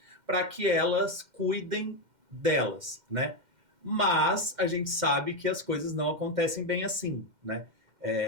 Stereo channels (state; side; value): late; left; 2.1 ms